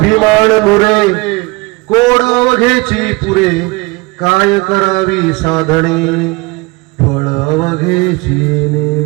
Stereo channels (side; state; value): left; quieter; 24.9 dB